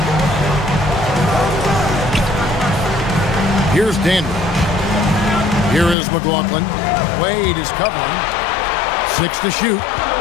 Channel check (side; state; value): right; drops out; at 6.0 s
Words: Here's Dandridge. Here is McLaughlin. Wade is covering. 6 to shoot.